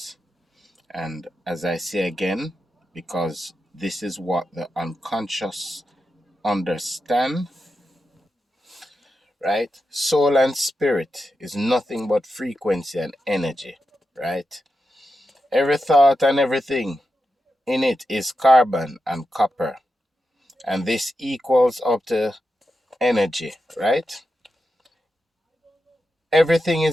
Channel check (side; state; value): both; normal; correlation 0.88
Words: And as I say again, because this is what the unconscious understand, right? Soul and spirit is nothing but frequency and energy, right? Every thought and everything in it is carbon and copper. And this equals up to energy, right? Everything